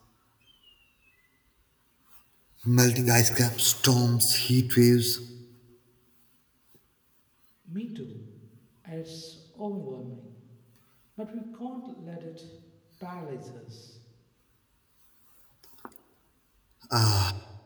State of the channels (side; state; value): both; identical; correlation 1.00